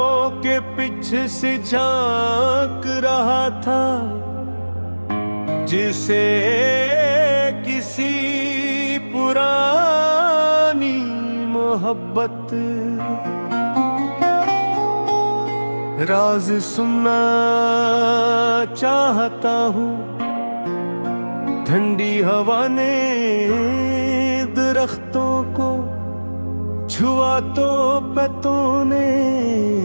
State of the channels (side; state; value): both; inverted; correlation -1.00